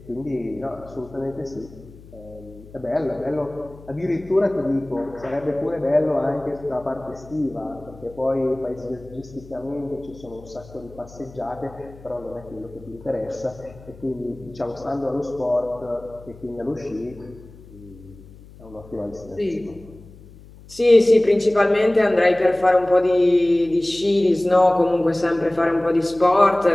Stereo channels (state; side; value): noise; left; hum, 21 dB below the sound